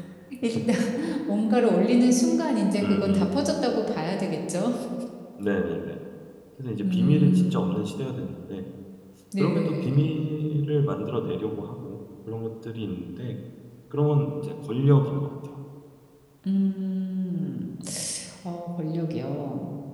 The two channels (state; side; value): identical; both; correlation 1.00